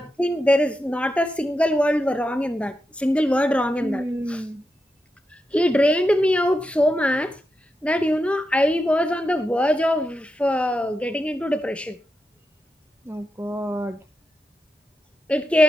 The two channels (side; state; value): both; normal; correlation 0.87